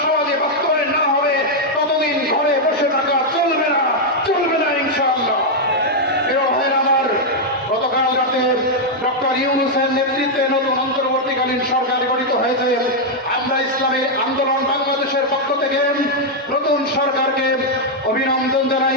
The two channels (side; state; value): both; normal; correlation -0.02